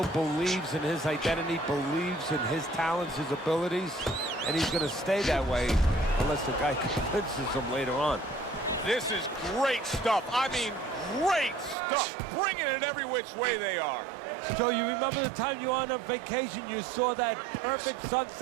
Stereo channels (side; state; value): left; drops out; at 11.8 s